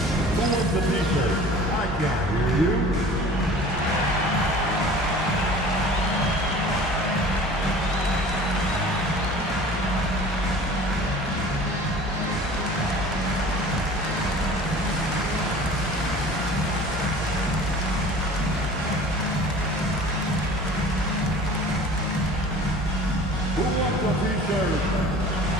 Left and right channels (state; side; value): normal; both; correlation 0.43